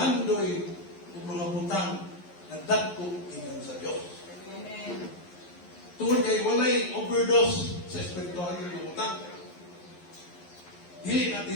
o mga butang na dagko ingon sa Dios. Amen. Tungod kay walay overdose sa espiritual nga butang. Dili na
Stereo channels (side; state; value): right; late; 11 ms